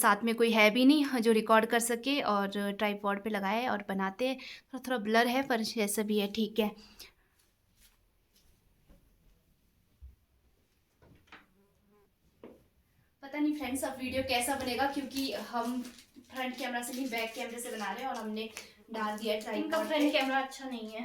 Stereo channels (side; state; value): both; identical; correlation 1.00